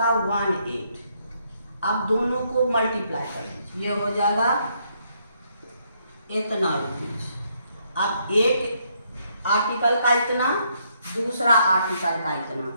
18। अब दोनों को मल्टीप्लाई कर लीजिए, ये हो जाएगा इतना रुपीज। अब एक आर्टिकल का इतना, दूसरा आर्टिकल का इतना,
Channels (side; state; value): both; inverted; correlation -0.73